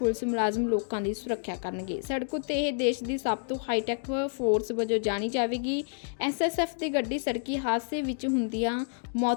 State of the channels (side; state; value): right; silent; digital silence